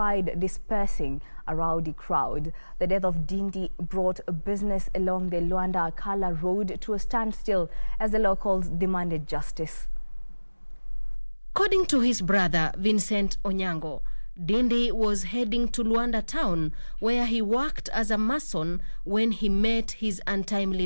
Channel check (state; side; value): inverted; both; correlation -1.00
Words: dispersing a rowdy crowd. The death of Dindi brought business along the Luanda-Akala road to a standstill as the locals demanded justice. According to his brother, Vincent Onyango, Dindi was heading to Luanda town where he worked as a mason when he met his